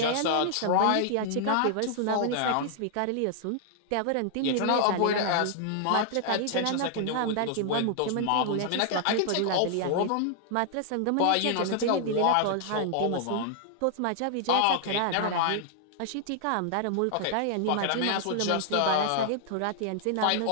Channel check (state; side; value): different; both; correlation -0.01